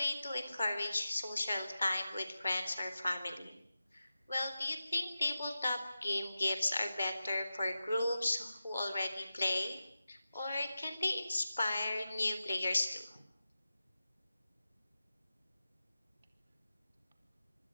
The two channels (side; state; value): both; inverted; correlation -0.93